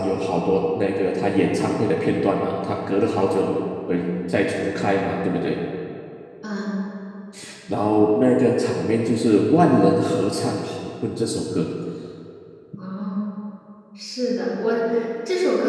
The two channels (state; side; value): identical; both; correlation 1.00